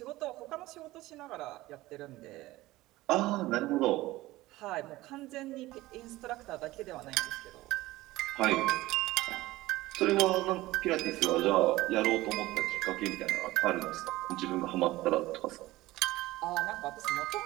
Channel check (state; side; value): quieter; left; 18.1 dB